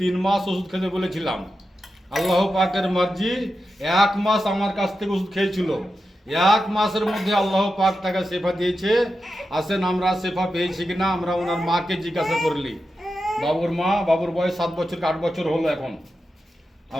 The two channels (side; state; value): both; normal; correlation 0.90